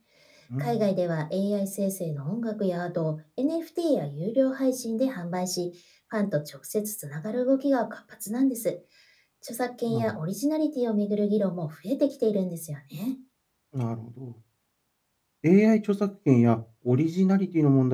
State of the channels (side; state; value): both; identical; correlation 1.00